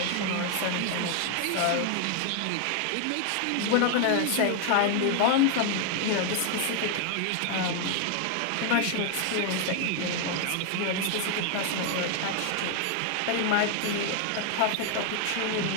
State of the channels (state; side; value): different; both; correlation 0.01